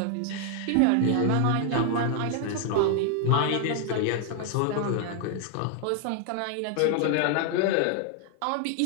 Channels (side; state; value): both; different; correlation 0.00